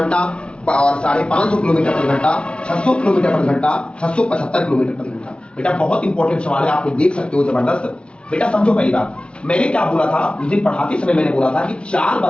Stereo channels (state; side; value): late; right; 0.057 ms